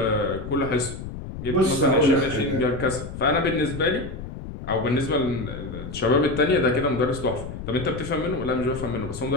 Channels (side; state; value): left; noise; rumble, 9 dB below the sound